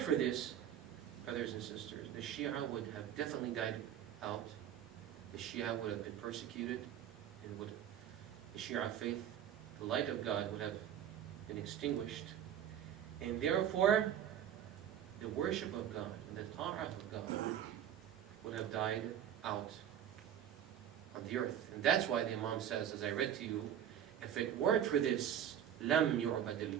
for this, brothers and sisters, the Shia would have definitely died out. The Shia would have been persecuted, and the Shia faith, the light of God, would have been extinguished. And therefore, the worship of God and the ta'ah of God would have died out on the earth. And that's why the Imam says, as I read to you, if it weren't for this, lam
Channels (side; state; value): left; quieter; 10.0 dB